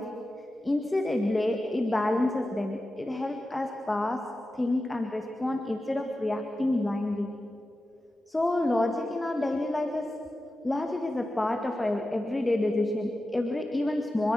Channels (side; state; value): both; normal; correlation 0.93